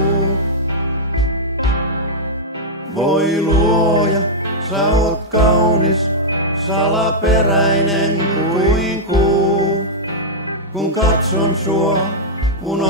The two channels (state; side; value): normal; both; correlation -0.06